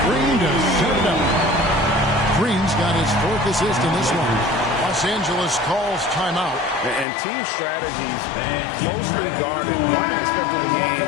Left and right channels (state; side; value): drops out; right; at 7.1 s